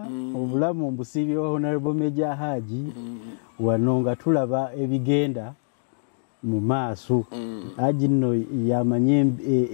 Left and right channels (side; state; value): right; silent; digital silence